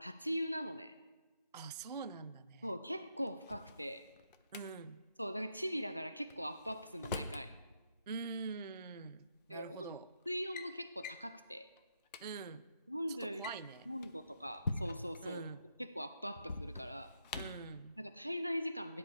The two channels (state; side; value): inverted; both; correlation -0.81